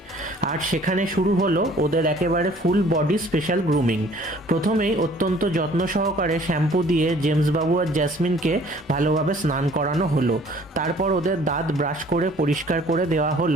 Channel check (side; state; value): both; normal; correlation 0.54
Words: আর সেখানে শুরু হলো ওদের একেবারে ফুল বডি স্পেশাল গ্রুমিং। প্রথমেই অত্যন্ত যত্ন সহকারে শ্যাম্পু দিয়ে জেমস বাবু আর জ্যাসমিনকে ভালোভাবে স্নান করানো হলো। তারপর ওদের দাঁত ব্রাশ করে পরিষ্কার করে দেওয়া